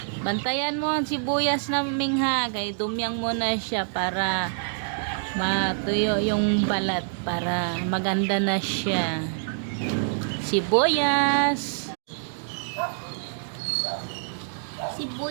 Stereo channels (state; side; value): silent; left; digital silence